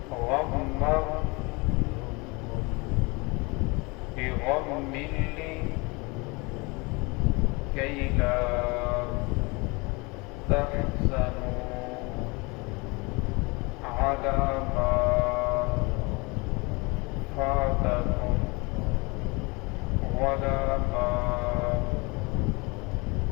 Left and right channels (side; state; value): right; quieter; 27.1 dB